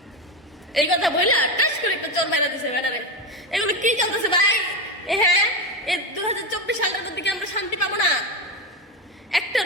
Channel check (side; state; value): both; normal; correlation 0.15